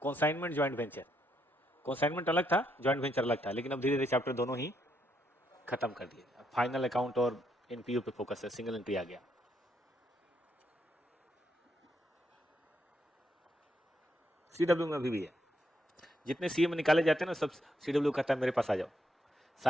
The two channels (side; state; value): both; normal; correlation 0.77